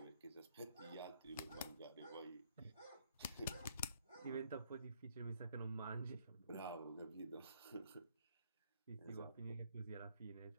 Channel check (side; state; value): both; inverted; correlation -0.67